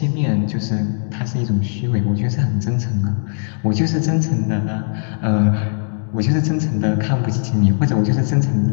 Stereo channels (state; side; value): silent; right; 62 dB below the other